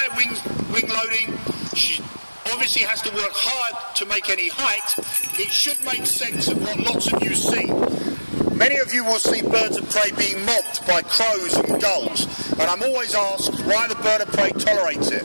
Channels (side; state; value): both; inverted; correlation -1.00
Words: wing loading, she obviously has to work hard to make any height. It should make sense of what lots of you see. Many of you will see birds of prey being mobbed by crows and gulls, and I'm always asked why the bird of prey tolerates it.